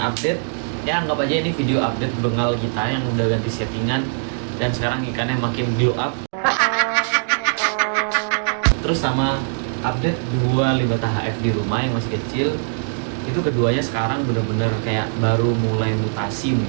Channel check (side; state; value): left; silent; digital silence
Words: Ya anggap aja ini video update bengal kita yang udah ganti settingan dan sekarang ikannya makin blow up. Terus sama update dua limbah HF di rumah yang masih kecil. Itu keduanya sekarang bener-bener kayak baru mulai mutasi